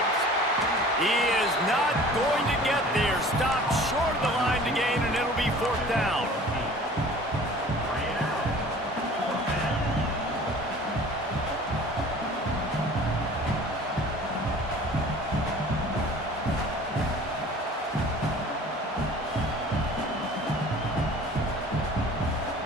He is not going to get there. Stopped short of the line to gain, and it'll be 4th down.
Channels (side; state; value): both; normal; correlation 0.46